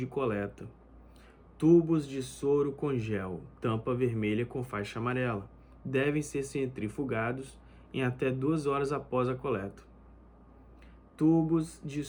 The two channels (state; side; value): identical; both; correlation 1.00